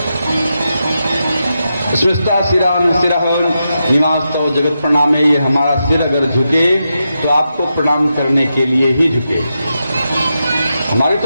स्मृता सिरान सिरह निवास्तव जगत प्रणामे, ये हमारा सिर अगर झुके तो आपको प्रणाम करने के लिए ही झुके। हमारी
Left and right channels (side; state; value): both; inverted; correlation -0.87